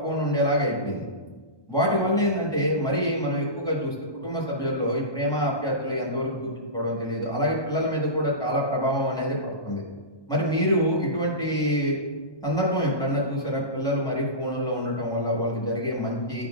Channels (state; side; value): late; right; 1.2 ms